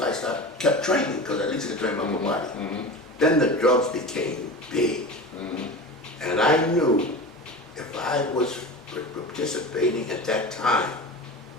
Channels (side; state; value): both; normal; correlation 0.31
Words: I kept training, because at least I could train my whole body. Then the drugs became big. And I knew if I was participating at that time,